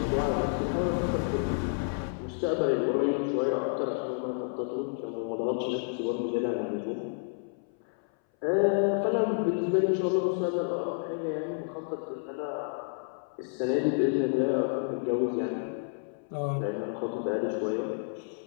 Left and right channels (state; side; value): silent; right; 58 dB below the other